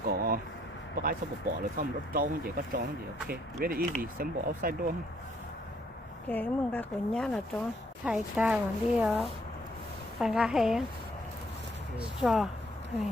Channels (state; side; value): normal; both; correlation 0.67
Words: có cái xong bỏ rồi xong nó trông chỉ có trông gì ok. Very easy sample outside door. Cái mừng cái của nhá là trông thầy ta còn đi ở bàn gà hè. Straw